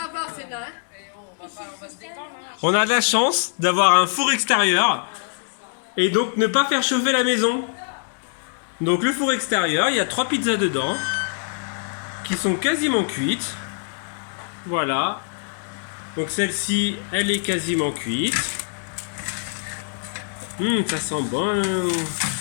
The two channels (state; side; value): silent; right; digital silence